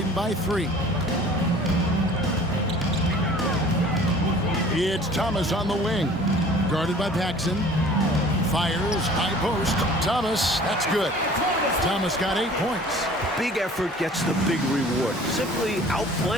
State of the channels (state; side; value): normal; both; correlation 0.48